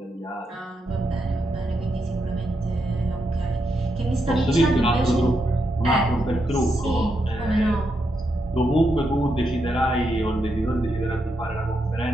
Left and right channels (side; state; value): both; normal; correlation 0.82